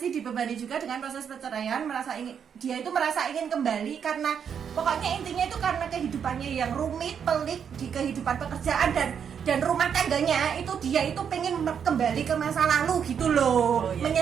dibebani juga dengan proses perceraian, dia itu merasa ingin kembali karena pokoknya intinya itu karena kehidupannya yang rumit, pelik di kehidupan pekerjaan dan rumah tangganya itu dia itu pengen kembali ke masa lalu gitu loh.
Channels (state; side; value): quieter; left; 7.6 dB